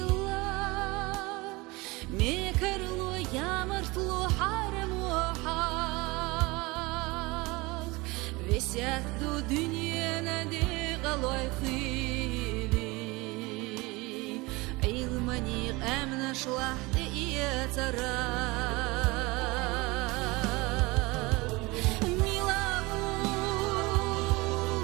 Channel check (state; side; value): quieter; left; 23.5 dB